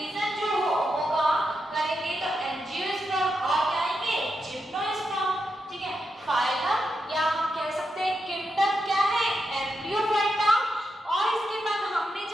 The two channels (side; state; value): both; normal; correlation 0.85